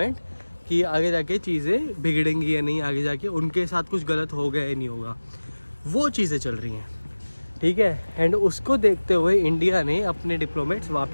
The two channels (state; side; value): inverted; both; correlation -1.00